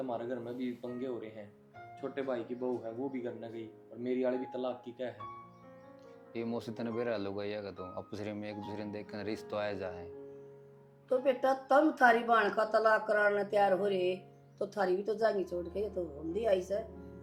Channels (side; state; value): both; identical; correlation 1.00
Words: घर में भी पंगे हो रहे हैं। छोटे भाई की बहू है वो भी घर न गई, और मेरी वाली भी तलाक की क्या है। ये मौसी तने बेरा लोग आएगा तो आपस में एक दूसरे ने देख कर रिश्ता आया जाए। तो बेटा तुम थारी बाण का तलाक कराने तैयार हो रहे तो थारी भी तो जाएंगी छोड़ के, ये तो होंदी आई से